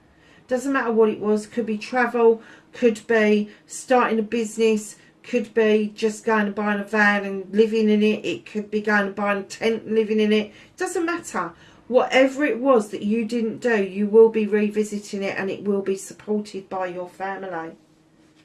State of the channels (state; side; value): identical; both; correlation 1.00